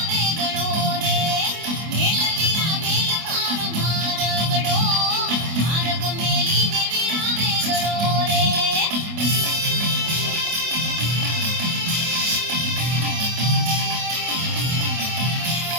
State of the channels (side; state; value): left; late; 24 ms